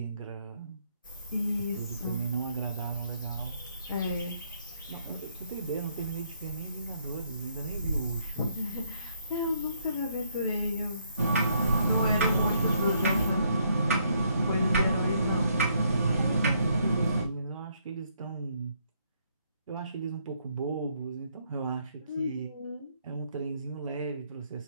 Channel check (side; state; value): both; inverted; correlation -0.71